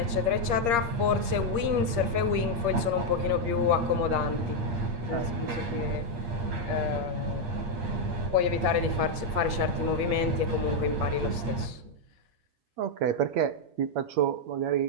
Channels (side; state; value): left; late; 8.5 ms